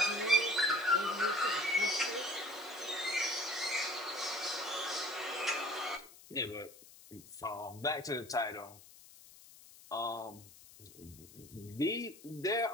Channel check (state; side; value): noise; left; hiss, 20 dB below the sound